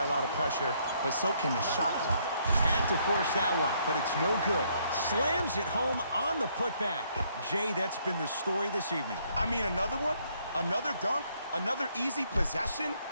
a lot of pressure, but so can the shot clock. Had to force that one, but it's no good. Slams it home on the putback. Jay, that's been the story this evening. I mean, another one? Another dunk? Another easy possession?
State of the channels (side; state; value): both; inverted; correlation -0.69